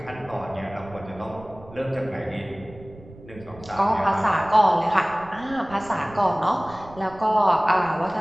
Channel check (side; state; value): right; noise; rumble, 19 dB below the sound